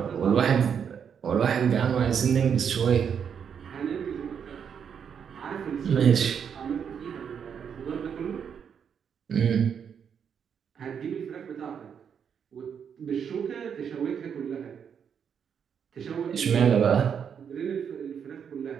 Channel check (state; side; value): quieter; left; 7.5 dB